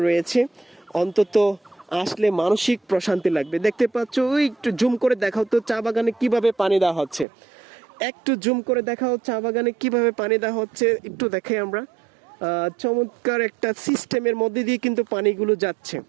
রয়েছে। অন্তত আসলে মানসিক প্রশান্তি লাগবে। দেখতে পাচ্ছ, ওই একটু জুম করে দেখাও তো চা বাগানে কিভাবে পানি দেওয়া হচ্ছে, একটু জুম করে দেখাও চা বাগানে কিভাবে পানি দেওয়া হচ্ছে, একটু দেখাই আমরা। চমৎকার একটা সিস্টেমের মধ্যে দিয়ে কিন্তু পানিগুলো যাচ্ছে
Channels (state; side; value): drops out; left; at 7.2 s